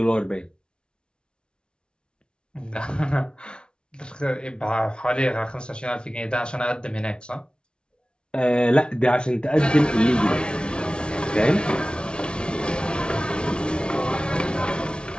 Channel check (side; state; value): right; late; 0.056 ms